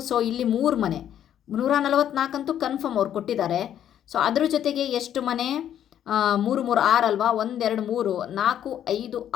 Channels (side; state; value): right; quieter; 10.3 dB